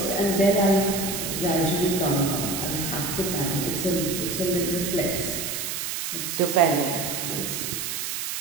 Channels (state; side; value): noise; right; hiss, 3 dB below the sound